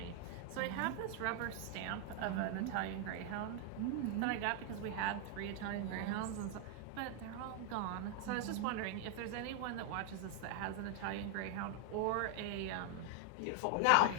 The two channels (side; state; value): both; different; correlation 0.00